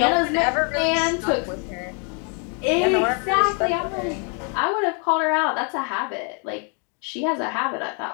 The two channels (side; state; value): right; quieter; 39.5 dB